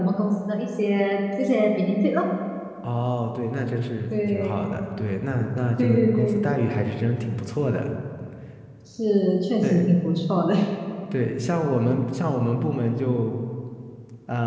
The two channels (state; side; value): identical; both; correlation 1.00